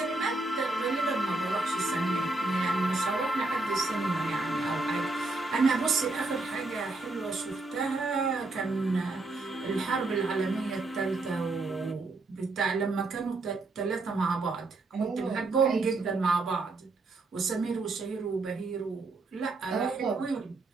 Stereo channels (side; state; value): left; quieter; 3.3 dB